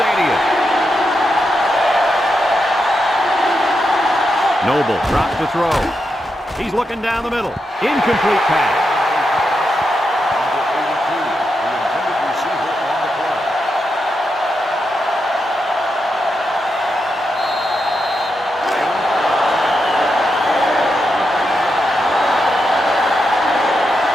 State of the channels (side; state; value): both; normal; correlation 0.85